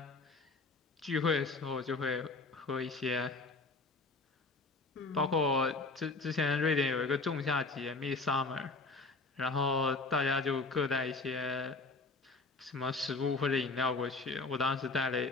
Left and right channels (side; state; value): right; quieter; 3.7 dB